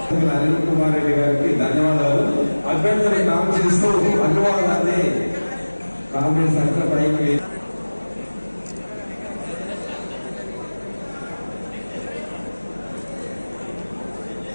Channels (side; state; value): both; inverted; correlation -1.00